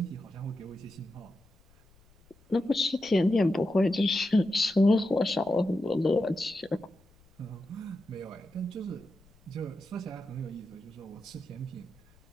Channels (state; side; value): noise; left; rumble, 30 dB below the sound